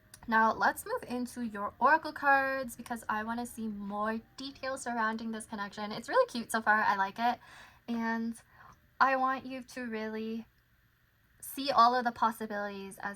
Now let's move into your oracle cards because I want to see more details surrounding this connection. It's really cute so far. I like it. And I want you to really see all of the possibilities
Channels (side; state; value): both; identical; correlation 1.00